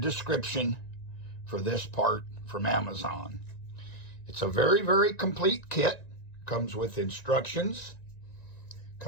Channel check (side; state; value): right; late; 1.9 ms